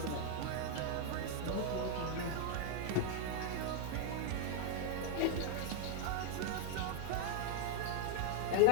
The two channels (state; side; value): different; both; correlation 0.00